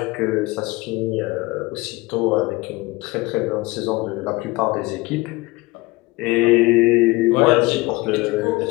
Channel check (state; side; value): quieter; right; 22.3 dB